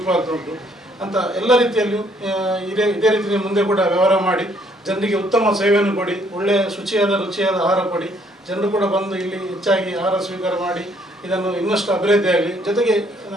ಆಗ್ತಾ ಉಂಟು ಅಂತ ಎಲ್ಲ ರೀತಿಯಲ್ಲಿಯೂ ಇದೇ ರೀತಿಯಲ್ಲಿ ಮುಂದೆ ಕೂಡ ವ್ಯವಹಾರ ಮಾಡಿ ಜನರಿಗೆ ಉತ್ತಮ ಸೇವೆಯನ್ನು ಕೊಡಿ, ಒಳ್ಳೆಯ ರುಚಿಯಾದ ಆಹಾರ ಕೊಡಿ. ಜನರು ಕೂಡ ಬಂದು ಇಲ್ಲಿ ಹೆಚ್ಚಾಗಿ ಆಹಾರ ಸ್ವೀಕಾರ ಮಾಡಿ ಇದನ್ನು ಇನ್ನಷ್ಟು ಅಭಿವೃದ್ಧಿ ಆಗಲಿ. ಜೊತೆಗೆ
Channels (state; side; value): normal; both; correlation 0.65